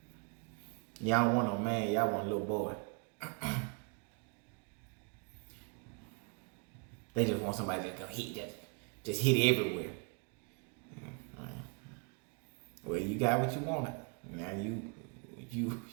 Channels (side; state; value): left; quieter; 36.3 dB